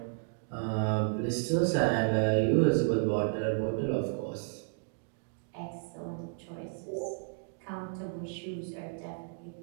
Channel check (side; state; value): left; silent; digital silence